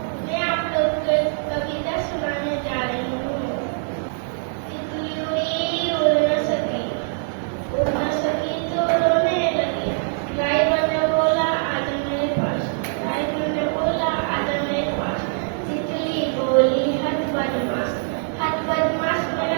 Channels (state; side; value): silent; left; 63 dB below the other